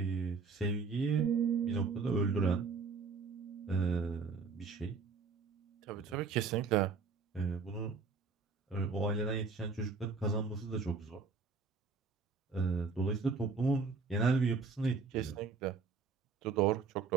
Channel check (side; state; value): left; quieter; 4.8 dB